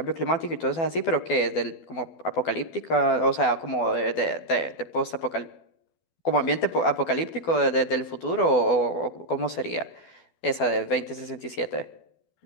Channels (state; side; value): late; right; 12 ms